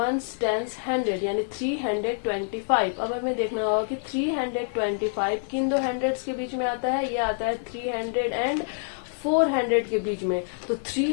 टेंस 100 यानी 325. अब हमें देखना होगा कि 325 किन दो हंड्रेड्स के बीच में आता है? ये आता है 300 एंड 400 के बीच में. तो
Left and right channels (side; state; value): right; silent; 61 dB below the other